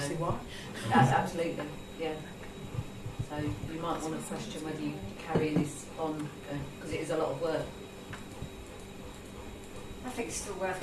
why. Absolutely, yeah. So you might want to question whether you carry this on, because it is a lot of work. I think it's still worth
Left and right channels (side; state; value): both; identical; correlation 1.00